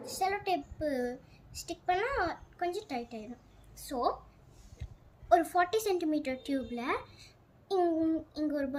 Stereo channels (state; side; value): identical; both; correlation 1.00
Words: செலோ டேப்பு ஸ்டிக் பண்ணால் கொஞ்சம் டைட் ஆகிடும். ஸோ ஒரு 40 சென்டிமீட்டர் டியூப்பில் இங்கே ஒரு